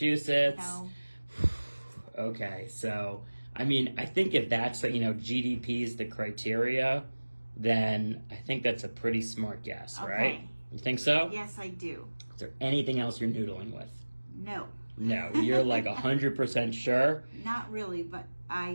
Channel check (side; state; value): both; inverted; correlation -1.00